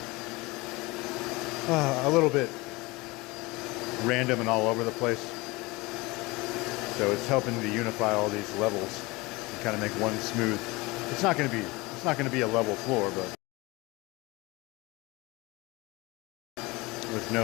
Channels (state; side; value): quieter; right; 23.1 dB